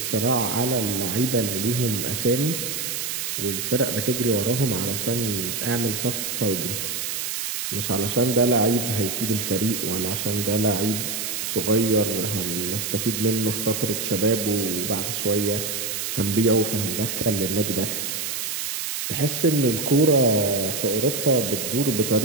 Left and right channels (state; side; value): noise; right; hiss, 3 dB below the sound